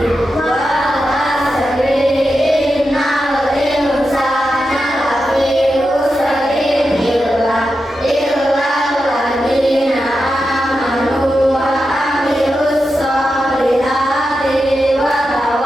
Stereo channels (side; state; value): both; normal; correlation 0.89